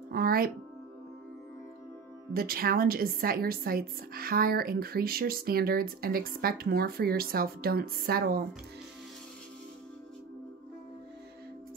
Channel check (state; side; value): quieter; left; 5.6 dB